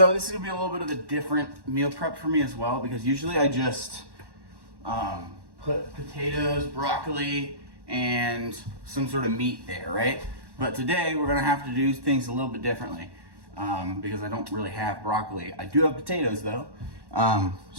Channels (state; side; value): late; left; 1.1 ms